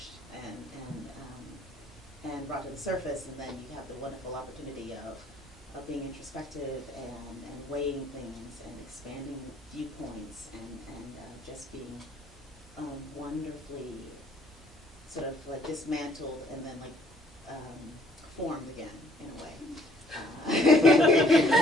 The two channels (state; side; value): normal; both; correlation 0.61